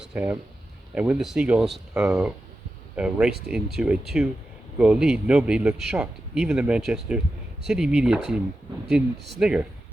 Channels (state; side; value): normal; both; correlation 0.91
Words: Ham, and when the Seagulls raced into a two-goal lead, nobody looked shocked. Even the Manchester City media team didn't snigger.